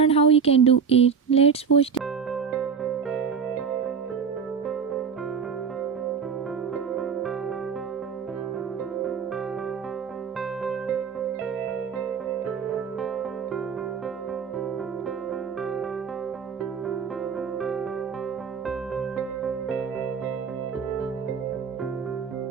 how you can do it. Let's watch.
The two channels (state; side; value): quieter; left; 6.3 dB